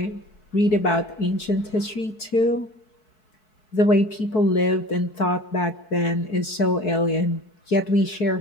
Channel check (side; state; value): right; late; 4.6 ms